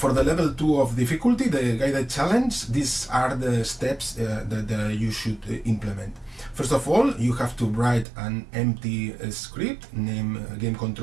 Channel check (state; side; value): drops out; left; at 8.1 s